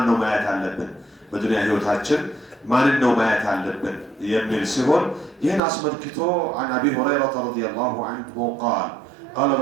ነው ማየት ያለብን በዱንያ ህይወታችን ማን ነው ማየት ያለብን የሚል ሲሆን ይህን አስመልክቶ عن ابي هريره رضي الله عنه قال قال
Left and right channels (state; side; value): drops out; left; at 5.6 s